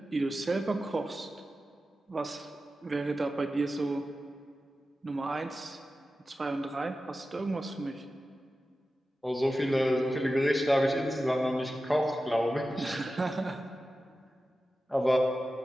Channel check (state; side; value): normal; both; correlation 0.93